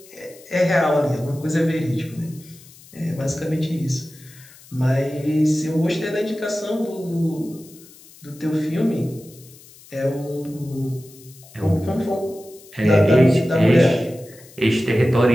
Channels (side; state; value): left; noise; hiss, 23 dB below the sound